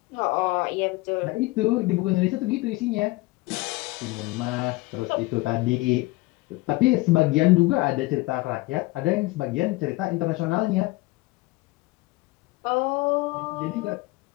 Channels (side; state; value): right; quieter; 21.3 dB